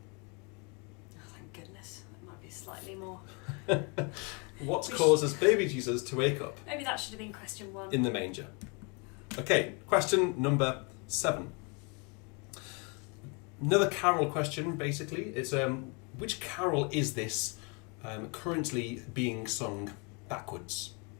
Oh, thank goodness. It might be slightly more. What causes baby Jesus to wake up? Maybe that should have been question 1. In the manger. Okay, question number 7. Another carol question, basically. It's which carol is this currently being sung backwards?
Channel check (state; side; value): quieter; right; 32.8 dB